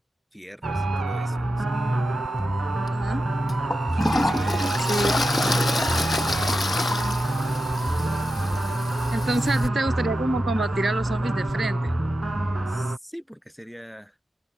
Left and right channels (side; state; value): both; normal; correlation 0.90